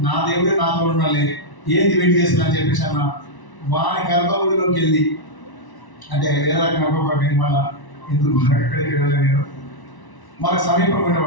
నా దేవుడే నాతో ఉండాలి, ఏంది వెయిట్ చేస్తున్నా అని చెప్పేసి అన్న. వాని గర్భగుడిలోకి వెళ్ళి, అంటే వేరే రకంగా మళ్ళీ ఎందుకు ఎక్కడికి వెళ్ళలేదు, మనకు సమీపం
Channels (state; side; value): late; right; 1.0 ms